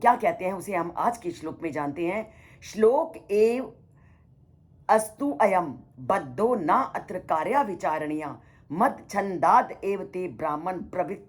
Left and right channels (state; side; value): identical; both; correlation 1.00